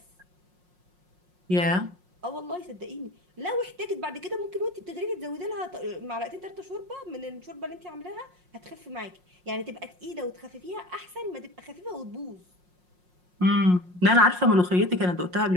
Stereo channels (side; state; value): left; late; 5.6 ms